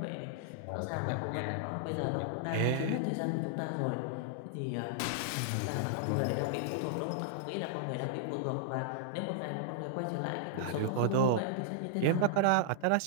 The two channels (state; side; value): different; both; correlation -0.01